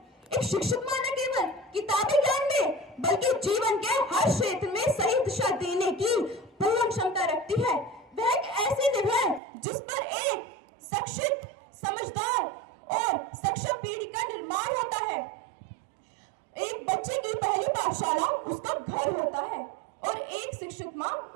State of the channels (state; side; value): drops out; left; at 9.4 s